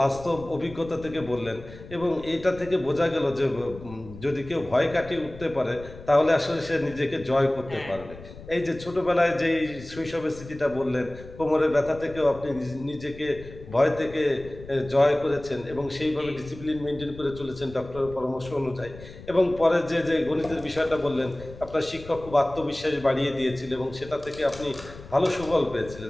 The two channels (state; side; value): noise; left; rumble, 16 dB below the sound